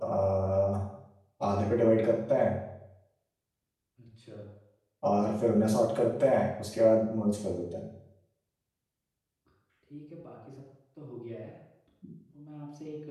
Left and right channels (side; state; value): both; identical; correlation 1.00